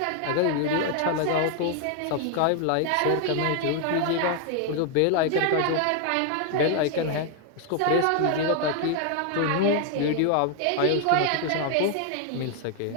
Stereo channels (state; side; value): different; both; correlation 0.00